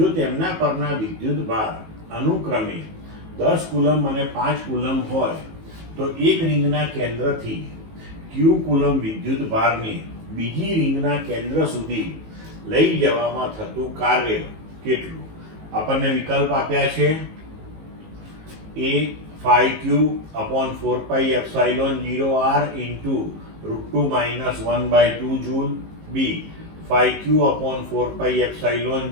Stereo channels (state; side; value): late; left; 19 ms